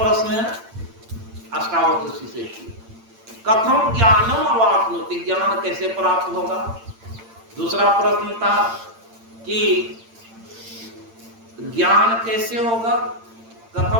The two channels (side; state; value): left; late; 8.8 ms